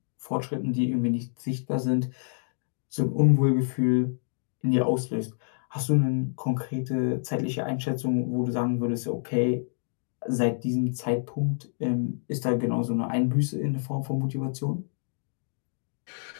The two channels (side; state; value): right; silent; digital silence